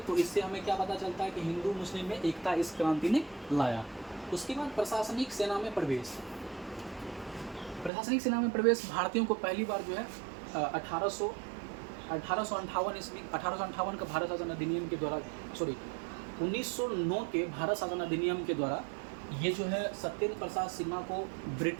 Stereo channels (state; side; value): drops out; left; at 7.9 s